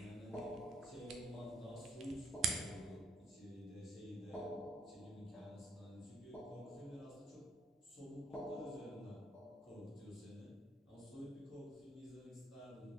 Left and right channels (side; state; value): both; normal; correlation 0.68